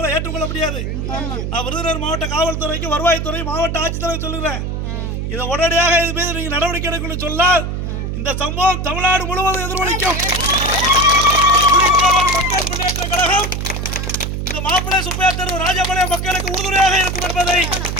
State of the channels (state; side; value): noise; right; hum, 3 dB below the sound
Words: ஏற்றுக்கொள்ள முடியாது. நான் விருதுநகர் மாவட்ட காவல்துறைக்கு வருவாய்த்துறை மாவட்ட ஆட்சித்தலைவர் சொல்லுகிறேன், இதை உடனடியாக இது மீது நீங்க நடவடிக்கை எடுக்கணும்னு சொன்னால் இந்த சம்பவம் தமிழ்நாடு முழுவதும் எதிரொலிக்கும். மக்கள் முன்னேற்ற கழகம் இந்த மாப்பிள்ளை சுப்பையா தெரு ராஜபாளையம் மக்களுக்கு உறுதுணையாக இருக்கும் என்பதை